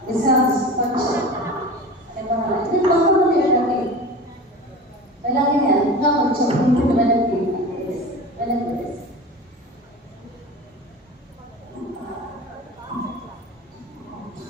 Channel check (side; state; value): both; normal; correlation 0.33